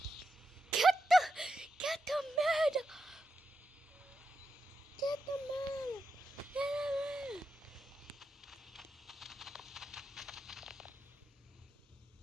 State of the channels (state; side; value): normal; both; correlation 0.86